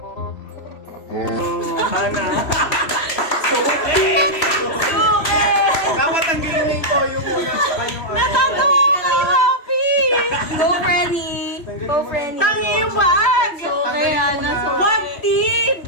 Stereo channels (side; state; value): right; late; 3.0 ms